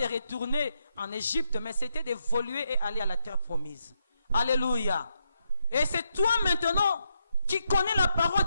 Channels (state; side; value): inverted; both; correlation -0.81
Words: retourner en Égypte, mais c'était d'évoluer et aller à la terre promise. Alléluia. Et c'est toi maintenant qui connais la parole